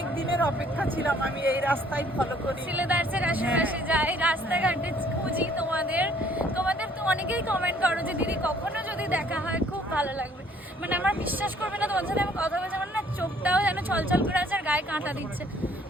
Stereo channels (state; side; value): normal; both; correlation 0.60